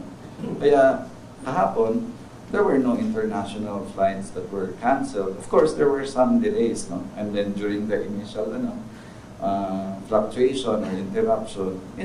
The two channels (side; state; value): both; identical; correlation 1.00